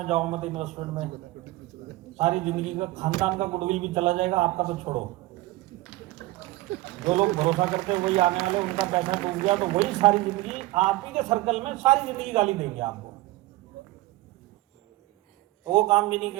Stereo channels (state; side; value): quieter; left; 18.8 dB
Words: जाओ मत, इन्वेस्टमेंट में। सारी जिंदगी का खानदान का गुडविल भी चला जाएगा, आपका तो छोड़ो। जो लोग भरोसा करते हैं वही आने वाले, उनका पैसा डूब गया तो वही सारी जिंदगी आप ही के सर्कल में सारी जिंदगी गाली देंगे आपको। तो वो काम भी नहीं